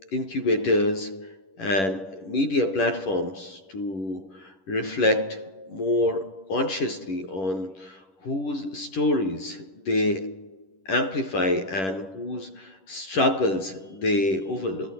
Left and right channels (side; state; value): right; late; 11 ms